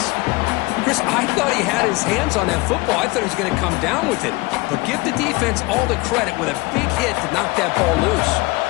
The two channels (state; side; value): quieter; right; 23.5 dB